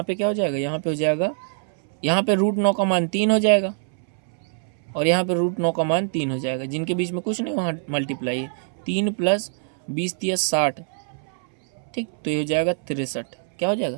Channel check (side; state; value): left; silent; 63 dB below the other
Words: पे क्या हो जाएगा, यहाँ पे हो जाएगा, यहाँ पे √9 का मान 3 हो जाएगा, और यहाँ पे √9 का मान 3 हो जाएगा, जिनके बीच में कुछ नहीं, वहाँ मल्टीप्लाई है। 3 प्लस 20 × 60, ठीक, तो ये हो जाएगा 63। क्या हो जाएगा?